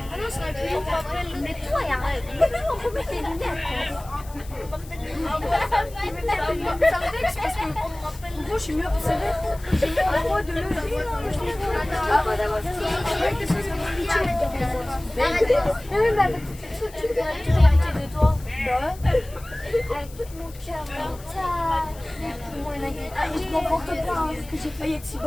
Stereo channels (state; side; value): noise; left; hiss, 21 dB below the sound